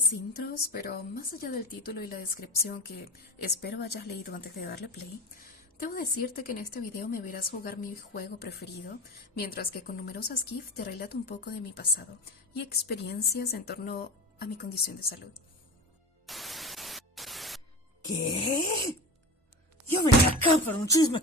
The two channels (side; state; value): both; normal; correlation 0.30